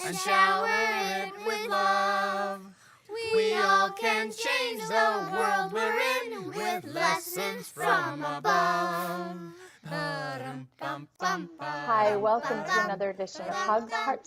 and shower it with love. We all can change the world we're in with lessons from above. Hi, welcome to another edition of HUGS,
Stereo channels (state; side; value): identical; both; correlation 1.00